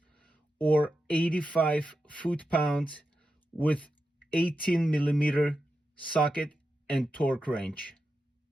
or 85 foot-pounds with 18 millimeter socket and torque wrench.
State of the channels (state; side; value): normal; both; correlation 0.89